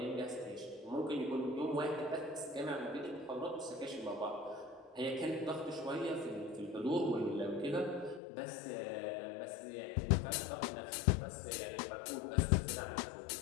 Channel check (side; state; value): right; drops out; at 8.2 s